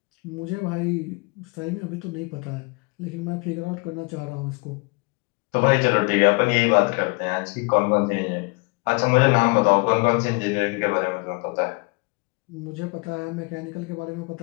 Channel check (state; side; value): quieter; right; 30.0 dB